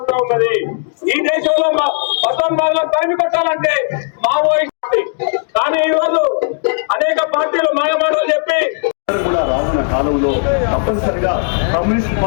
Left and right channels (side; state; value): right; silent; digital silence